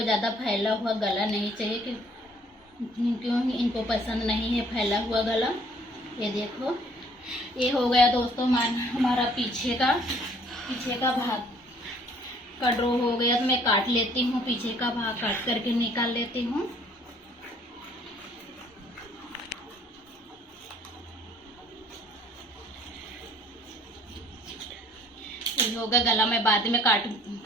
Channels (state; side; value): normal; both; correlation 0.59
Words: ज़्यादा फैला हुआ गला नहीं चाहिए, क्यों इनको पसंद नहीं है फैला हुआ गला। ये देखो ये हो गया दोस्तों हमारा पीछे का भाग का ड्रॉ हो गया। तो मैं काट लेती हूँ, पीछे का भाग काट करके निकाल लेती हूँ। होगा गला मैं बाद में